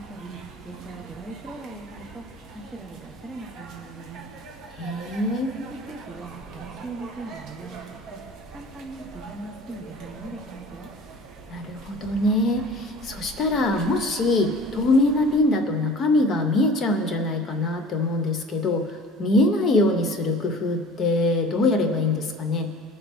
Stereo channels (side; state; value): both; normal; correlation 0.43